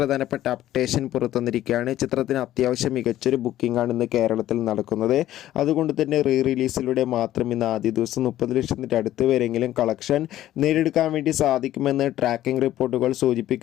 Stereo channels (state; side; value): quieter; right; 13.4 dB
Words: അപ്ഡേഷൻ പുറത്തുവന്നിരിക്കുകയാണ്. ചിത്രത്തിന് അത്യാവശ്യം മികച്ചൊരു ബുക്കിംഗ് ആണ് ഇന്ന് കേരളത്തിൽ നടക്കുന്നത്. അതുകൊണ്ട് തന്നെ റിലീസിലൂടെ മാത്രം ഇന്ന് ആദ്യ ദിവസം 30 ലക്ഷത്തിൻ്റെ അടുത്ത് വരെയെങ്കിലും കളക്ഷൻ നേടിയെടുക്കാൻ വേണ്ടി സാധിക്കുമെന്ന് ട്രാക്കിംഗ് റിപ്പോർട്ടുകൾ